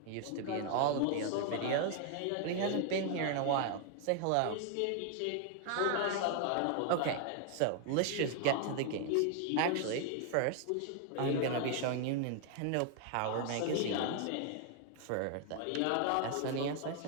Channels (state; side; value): different; both; correlation 0.00